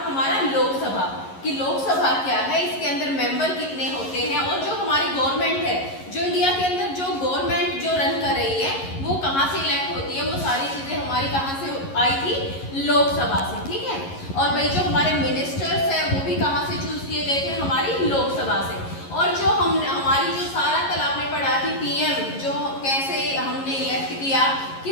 हमारा लोकसभा कि लोकसभा क्या है, इसके अंदर मेंबर कितने होते हैं, और जो हमारी गवर्नमेंट है, जो इंडिया के अंदर जो गवर्नमेंट जो रन कर रही है वो कहाँ से इलेक्ट होती है, वो सारी चीजें हमारी कहाँ से आई थी? लोकसभा से। ठीक है, और भाई जो हमारे मिनिस्टर्स है वो भी कहाँ से चूज किए गए थे? हमारी लोकसभा से। और जो हमारी जो सारा कल आपने पढ़ा थी पीएम जो कैसे हमने इलेक्ट किया कि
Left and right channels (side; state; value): right; late; 11 ms